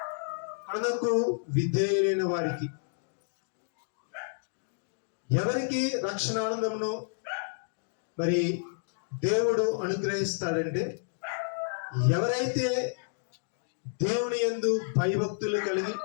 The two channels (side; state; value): right; silent; digital silence